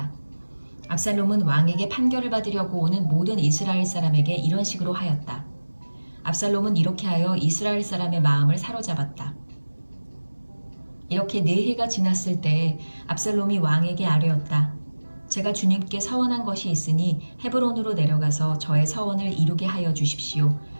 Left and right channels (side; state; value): both; inverted; correlation -1.00